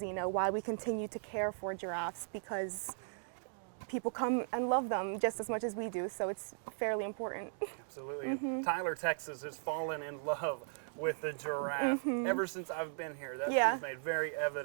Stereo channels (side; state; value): left; silent; digital silence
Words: why we continue to care for giraffes, because people come and love them just as much as we do. So it's fairly important. Absolutely. And Tyler, Texas has fallen in love with the giraffe ever since I've been here. That's been made very